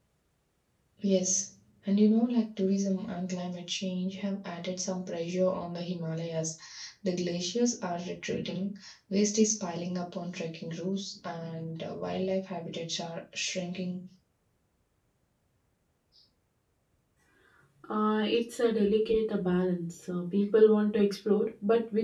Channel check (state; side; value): identical; both; correlation 1.00